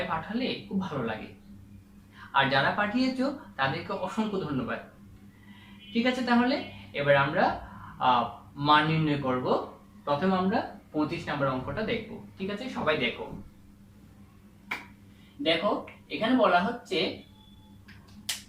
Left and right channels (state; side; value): identical; both; correlation 1.00